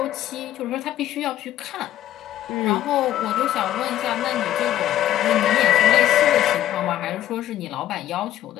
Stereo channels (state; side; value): quieter; right; 12.5 dB